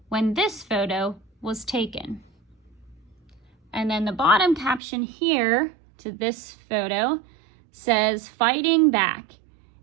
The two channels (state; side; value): drops out; left; at 4.8 s